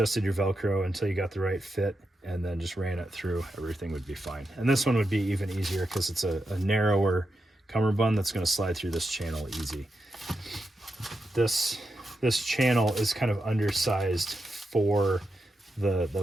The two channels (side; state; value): both; normal; correlation 0.87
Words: your Velcro until you got the right fit, and then just ran it through, everything would be fine. And this one would be even easier because it's a narrower cummerbund that's going to slide through this channel easy. This channel is kind of undersized for the